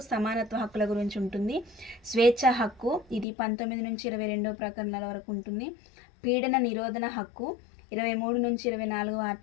సమానత్వ హక్కుల గురించి ఉంటుంది. స్వేచ్ఛ హక్కు ఇది 19 నుంచి 22వ ప్రకరణల వరకు ఉంటుంది. పీడన నిరోధన హక్కు 23 నుంచి 24వ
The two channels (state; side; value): drops out; right; at 3.2 s